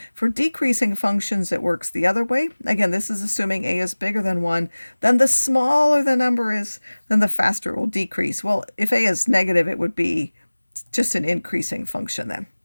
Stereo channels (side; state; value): both; inverted; correlation -1.00